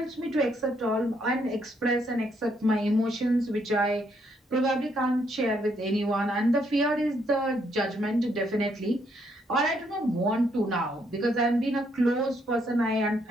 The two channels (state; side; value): normal; both; correlation 0.73